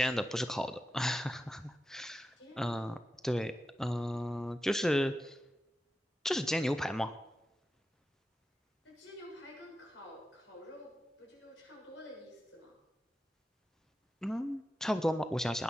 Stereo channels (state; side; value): normal; both; correlation 0.91